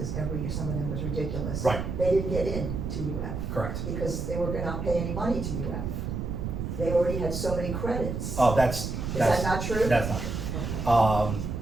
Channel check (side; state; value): right; noise; rumble, 3 dB below the sound